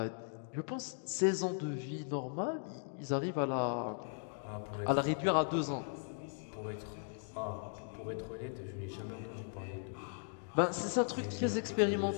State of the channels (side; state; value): right; silent; digital silence